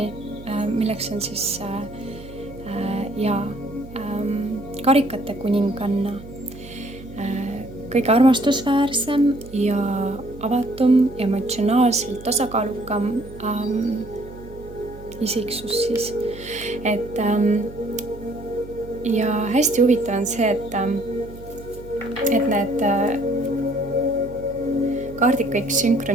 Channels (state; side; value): noise; right; hum, 17 dB below the sound